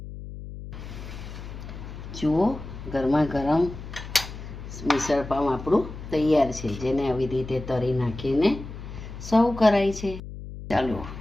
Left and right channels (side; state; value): left; noise; hum, 11 dB below the sound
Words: જુઓ ગરમા ગરમ મિસળ પાવ આપણું તૈયાર છે, જેને આવી રીતે તરી નાખીને સર્વ કરાય છે. ચાલો